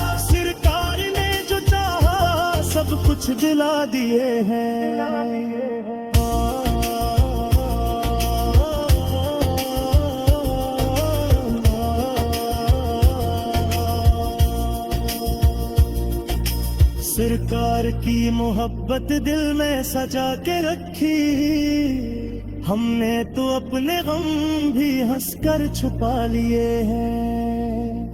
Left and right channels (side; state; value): both; identical; correlation 1.00